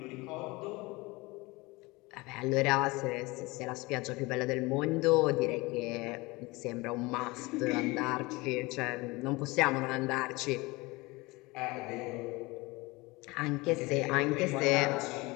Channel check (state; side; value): quieter; right; 23.3 dB